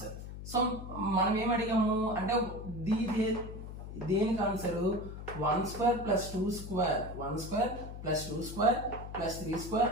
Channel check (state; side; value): noise; left; hum, 10 dB below the sound